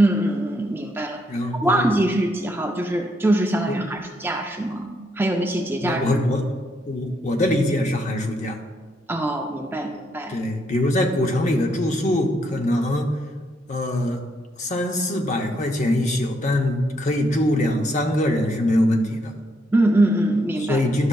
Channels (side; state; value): both; normal; correlation 0.76